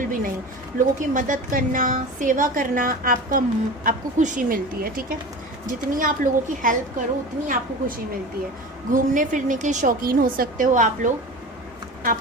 भी नहीं। लोगों की मदद करना, सेवा करना आपको खुशी मिलती है, ठीक है। जितनी आप लोगों की हेल्प करो उतनी आपको खुशी मिलती है। घूमने फिरने के शौकीन हो सकते हो आप लोग, आप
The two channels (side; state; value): both; normal; correlation 0.33